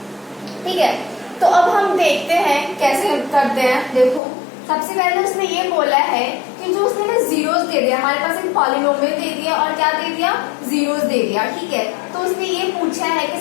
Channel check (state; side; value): drops out; right; at 4.2 s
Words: ठीक है। तो अब हम देखते हैं कैसे करते हैं। देखो, सबसे पहले उसने ये बोला है कि जो उसने ना जीरोस दे दिया, हमारे पास एक पॉलिनोमियल दे दिया और क्या दे दिया, जीरोस दे दिया, ठीक है। तो उसने ये पूछा है कि